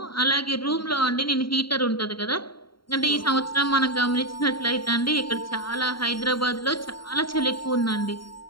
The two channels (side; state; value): right; late; 0.73 ms